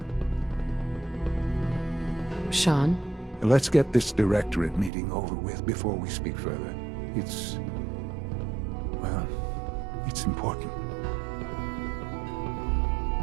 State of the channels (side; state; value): left; drops out; at 4.9 s